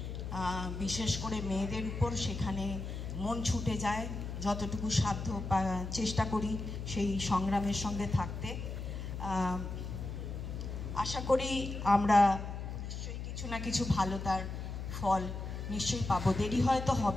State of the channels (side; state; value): left; noise; hum, 6 dB below the sound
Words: বিশেষ করে মেয়েদের উপর, সেখানে মন ছুটে যায়। যতটুকু সাধ্য চেষ্টা করি সেই সংগ্রামের সঙ্গে থাকতে। আশা করি আমরা নিশ্চয়ই কিছু না কিছু ভালো তার ফল নিশ্চয়ই পাবো। দেরি হয়তো